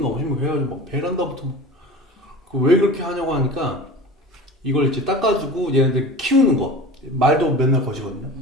50몇 개 해가지고 막 베란다부터 왜 그렇게 하냐고 하니까 이걸 이제 닦아주고 얘네들 키우는 거 말도 맨날 거시거든요.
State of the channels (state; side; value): normal; both; correlation 0.35